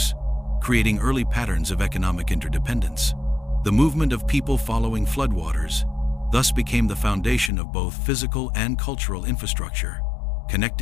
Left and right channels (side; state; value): right; drops out; at 7.5 s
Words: creating early patterns of economic interdependence. The movement of people following floodwaters thus became the foundation of both physical and cultural infrastructure,